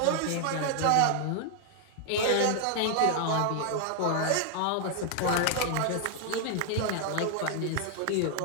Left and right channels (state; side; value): different; both; correlation 0.00